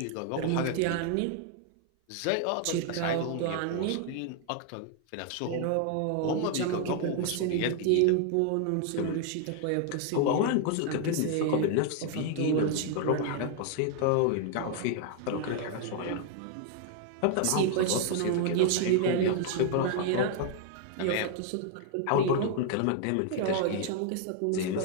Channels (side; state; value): both; different; correlation 0.00